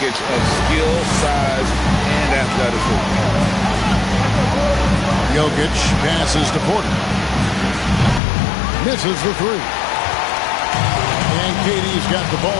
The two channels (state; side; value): drops out; right; at 8.2 s